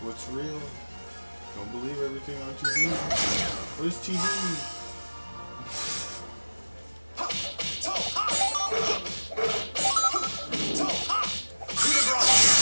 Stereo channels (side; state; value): both; inverted; correlation -1.00